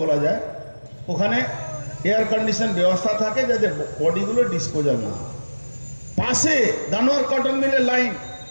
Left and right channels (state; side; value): inverted; both; correlation -1.00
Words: বলা যায়। ওখানে এয়ার কন্ডিশন ব্যবস্থা থাকে যাতে বডিগুলো ডিসপোজাল না। পাশে দানোয়ার কটন মিলের লাইন,